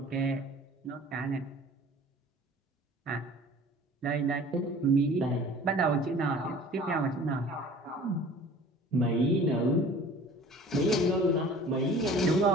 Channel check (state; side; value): normal; both; correlation 0.46